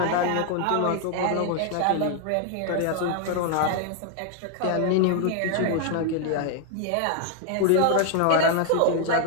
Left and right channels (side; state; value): both; different; correlation 0.00